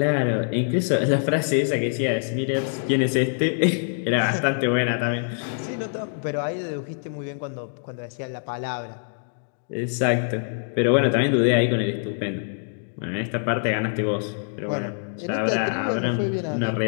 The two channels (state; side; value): silent; right; digital silence